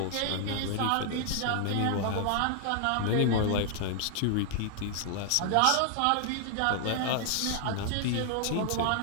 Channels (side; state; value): both; different; correlation 0.00